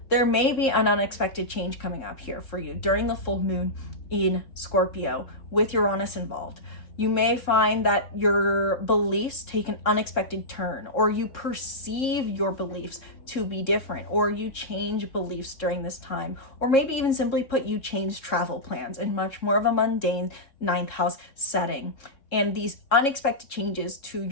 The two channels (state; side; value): late; right; 3.7 ms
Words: there may be an unexpected change coming up here for you during the full moon in Scorpio with Uranus involved. You may find that your beliefs take an unexpected turn, or you perceive your beliefs to be different, or you change beliefs during this time, or maybe even simply put, you change travel plans in much more of a mundane 9th house setting. And these unexpected changes to